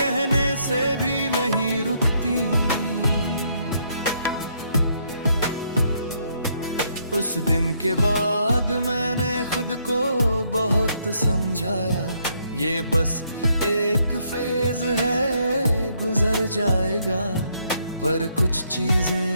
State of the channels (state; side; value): inverted; both; correlation -0.72